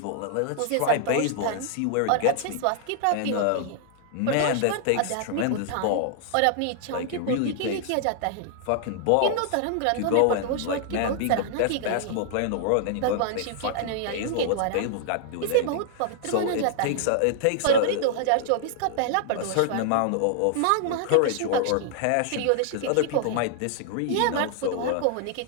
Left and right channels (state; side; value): different; both; correlation -0.01